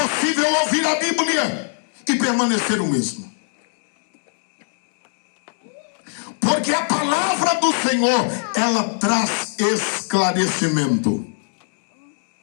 ouvir a Bíblia e permanecer o mesmo, porque a palavra do Senhor, ela traz esclarecimento.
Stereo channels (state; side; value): silent; right; digital silence